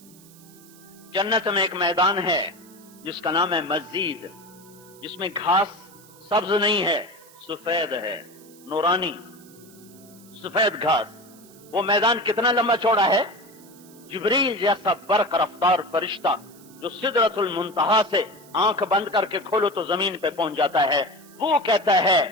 جنت میں ایک میدان ہے جس کا نام ہے مسجد، جس میں گھاس سبز نہیں ہے، سفید ہے، نورانی سفید گھاس۔ وہ میدان کتنا لمبا چوڑا ہے؟ جبریل جیسا برق رفتار فرشتہ جو سدرۃ المنتہا سے آنکھ بند کر کے کھولو تو زمین پہ پہنچ جاتا ہے، وہ کہتا ہے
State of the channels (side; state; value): right; noise; hiss, 24 dB below the sound